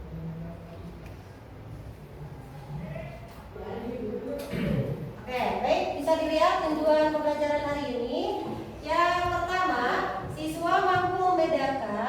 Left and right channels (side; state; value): both; identical; correlation 1.00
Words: Oke, baik, bisa dilihat tujuan pembelajaran hari ini. Yang pertama, siswa mampu